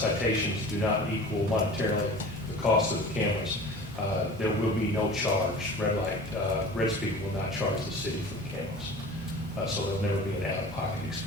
do not equal monetarily the cost of the cameras, there will be no charge. Red Speed will not charge the city for the cameras. So there'll never be an out-of-pocket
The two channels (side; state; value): both; normal; correlation 0.40